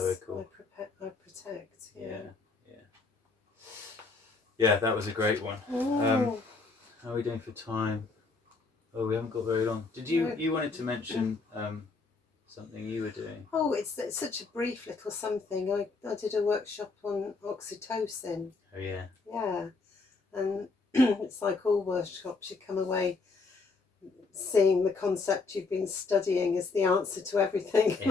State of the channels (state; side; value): quieter; right; 4.0 dB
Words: I protect. Yeah, that was a great one. How are we doing for time? Oh, we haven't got very long. Did you wanted to mention something you were doing? Oh, it's such a brief little something. I did a workshop on oxytocin. Oh yeah. Yeah, and it's like all workshops, you come away seeing the concept you've been studying as the answer to everything.